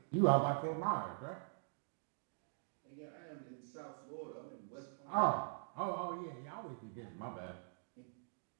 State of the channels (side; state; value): left; silent; digital silence